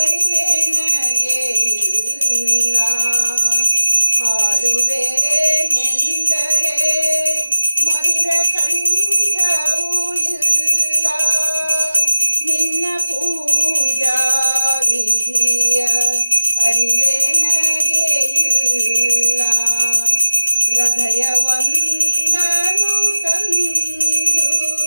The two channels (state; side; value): inverted; both; correlation -0.95